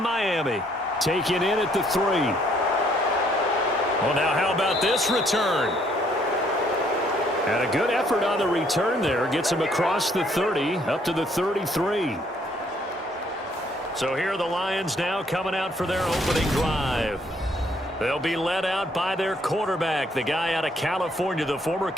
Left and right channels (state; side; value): normal; both; correlation 0.66